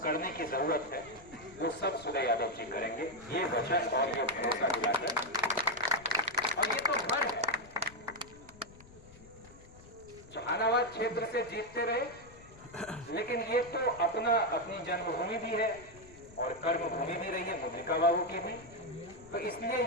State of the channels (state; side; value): noise; left; rumble, 21 dB below the sound